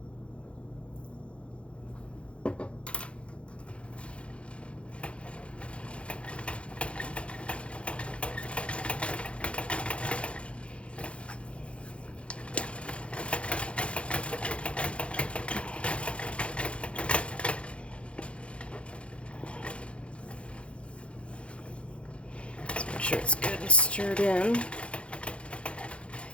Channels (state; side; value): late; right; 0.060 ms